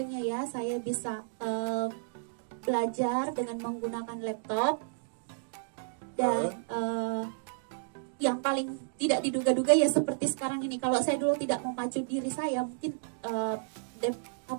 ya. Saya bisa belajar dengan menggunakan laptop. Dan yang paling tidak diduga-duga ya seperti sekarang ini. Kalau saya dulu tidak memacu diri saya, mungkin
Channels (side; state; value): left; silent; digital silence